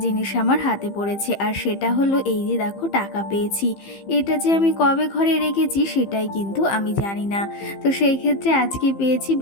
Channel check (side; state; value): right; late; 15 ms